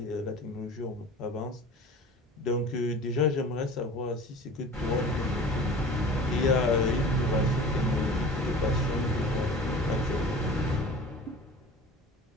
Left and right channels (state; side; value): normal; both; correlation 0.40